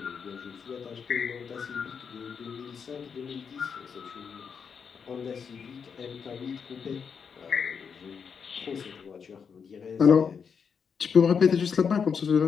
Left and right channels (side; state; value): right; quieter; 6.4 dB